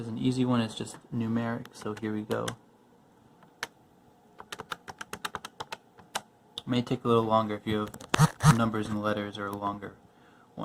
an easy one. It's just numeric. So here we go. It may take a little longer if you have numbers and letters or a longer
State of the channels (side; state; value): both; identical; correlation 1.00